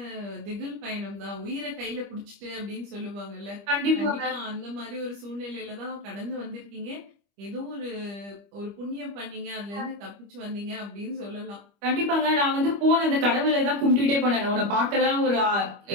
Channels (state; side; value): late; left; 25 ms